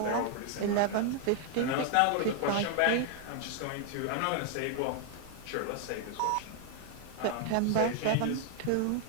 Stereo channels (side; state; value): both; different; correlation 0.00